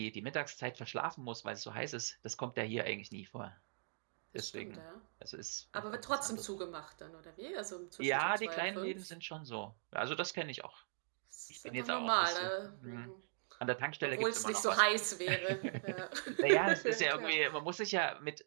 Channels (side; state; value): left; silent; digital silence